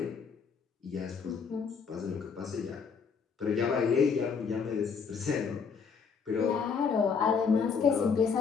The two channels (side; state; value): right; quieter; 5.9 dB